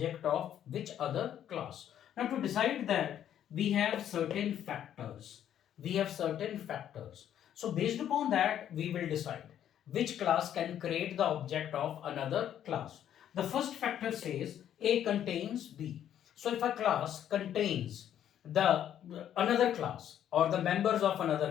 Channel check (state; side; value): quieter; right; 10.4 dB